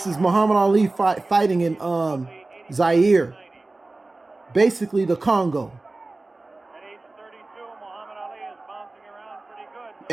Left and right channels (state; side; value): quieter; left; 3.1 dB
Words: is Muhammad Ali fighting in Zaire. Basically the Congo.